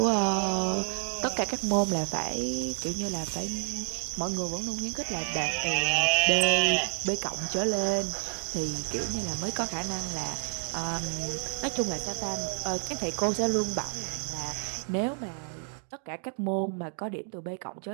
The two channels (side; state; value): left; silent; 56 dB below the other